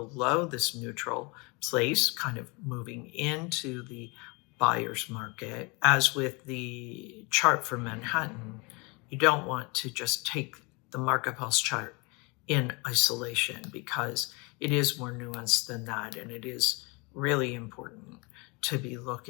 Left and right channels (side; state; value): right; quieter; 28.8 dB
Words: this neutral place, kind of moving into the buyer's market. As with the chart for Manhattan, you don't want to just take the market pulse chart in isolation, because it is more nuanced than that, and it is really important to be